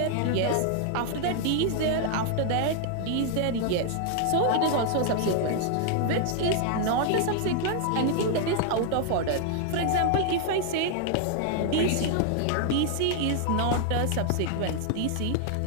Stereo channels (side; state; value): both; different; correlation 0.00